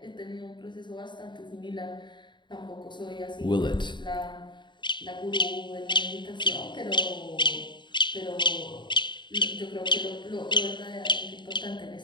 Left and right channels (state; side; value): late; right; 0.22 ms